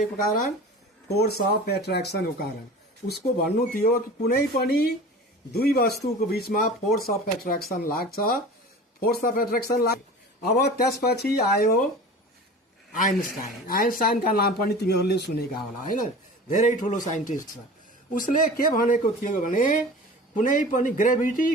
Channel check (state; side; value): normal; both; correlation 0.37